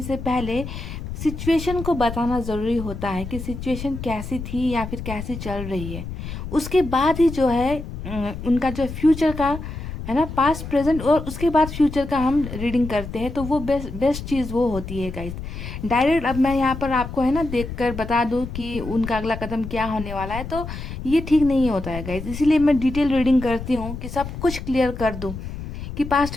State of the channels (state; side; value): noise; left; rumble, 8 dB below the sound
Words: से पहले सिचुएशन को बताना ज़रूरी होता है कि सिचुएशन कैसी थी या फिर कैसी चल रही है। उसके बाद ही जो है उनका जो फ्यूचर का, है ना, पास्ट, प्रेजेंट और उसके बाद फ्यूचर का हम रीडिंग करते हैं, तो वो बेस्ट चीज़ वो होती है गाइस। डायरेक्ट अब मैं यहाँ पर आपको, है ना, देखकर बता दूँ कि उनका अगला कदम क्या होने वाला है, तो ये ठीक नहीं होता है गाइस। इसीलिए मैं डिटेल रीडिंग करती हूँ कि सब कुछ क्लियर कर दूँ कि पास्ट